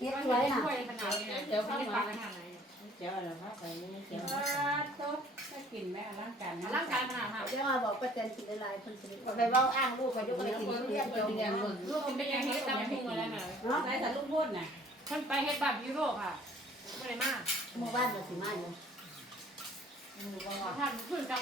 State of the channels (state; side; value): normal; both; correlation 0.55